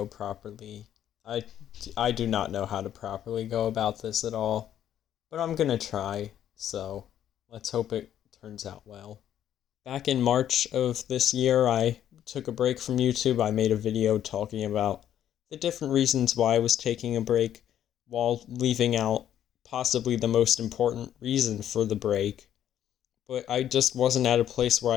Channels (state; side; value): quieter; right; 10.7 dB